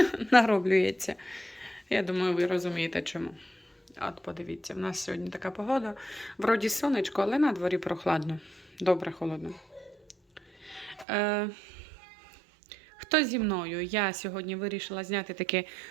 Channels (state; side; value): drops out; left; at 11.1 s